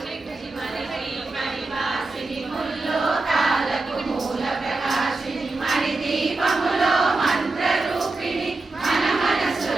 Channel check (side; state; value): left; quieter; 3.4 dB